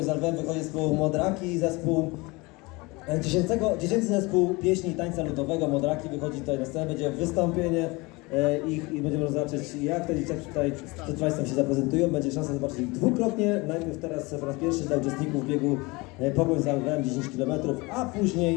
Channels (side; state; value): right; quieter; 24.7 dB